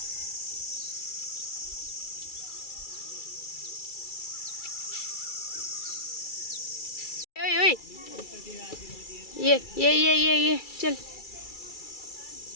ओए ओए, ये चल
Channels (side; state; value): right; late; 2.3 ms